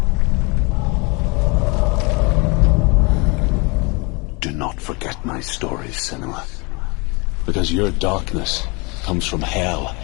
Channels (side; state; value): right; quieter; 29.3 dB